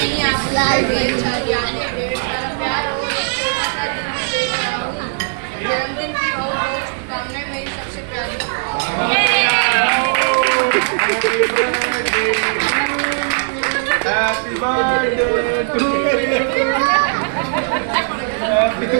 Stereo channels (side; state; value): left; silent; 65 dB below the other